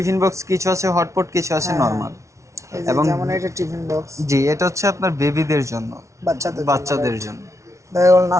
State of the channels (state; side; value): late; left; 0.14 ms